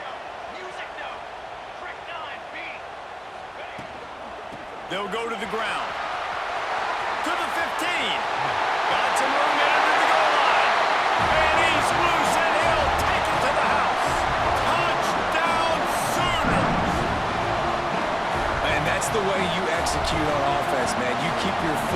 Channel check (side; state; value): both; identical; correlation 1.00